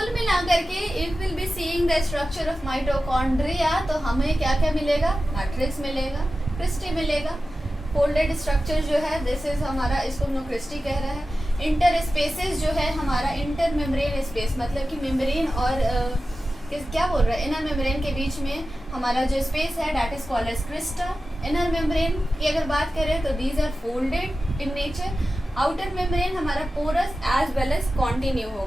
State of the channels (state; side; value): normal; both; correlation 0.94